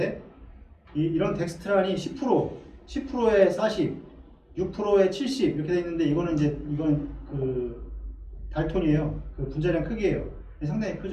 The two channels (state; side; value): identical; both; correlation 1.00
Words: 이런 덱스트란이 10%에 40, 6%에 70 이렇게 돼 있는데 이건 그 달톤이에요. 그 분자량 크기예요. 상당히